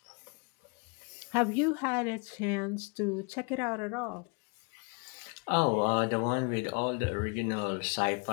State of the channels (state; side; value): quieter; right; 34.9 dB